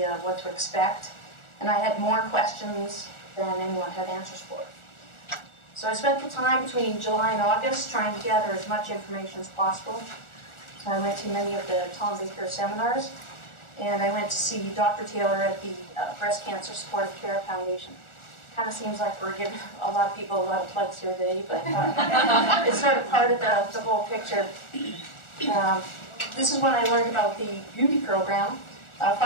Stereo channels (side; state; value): right; late; 1.4 ms